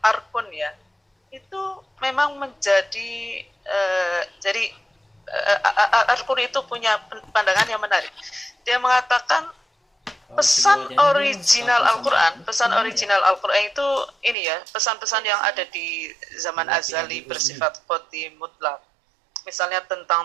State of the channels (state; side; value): drops out; left; at 14.4 s